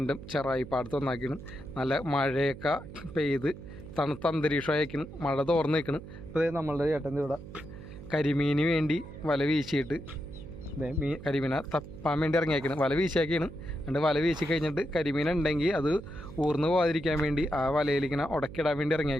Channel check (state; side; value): noise; right; hum, 14 dB below the sound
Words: ചെറായി പാടത്ത് വന്നാക്കിയാണ്. നല്ല മഴയൊക്കെ പെയ്ത് തണുത്ത അന്തരീക്ഷമായിരിക്കണം, മഴ തോർന്ന് നിൽക്കണം. അപ്പോൾ നമ്മളുടെ ചേട്ടൻ്റെ ഇവിടെ കരിമീന് വേണ്ടി വല വീശിയിട്ട് കരിമീനെ തപ്പാൻ വേണ്ടി ഇറങ്ങിയേക്കണം. വല വീശിയാക്കിയാണ്. എന്നിട്ട് വല വീശി കഴിഞ്ഞിട്ട് കരിമീൻ ഉണ്ടെങ്കിൽ അത് ഊർന്ന് പോകാതിരിക്കാൻ വേണ്ടി ആ വലയിലിങ്ങനെ ഉടക്കിടാൻ വേണ്ടി